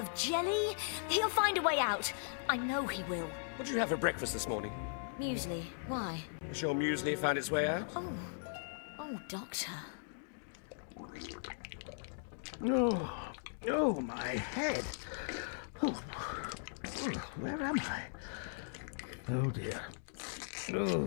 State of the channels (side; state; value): right; silent; digital silence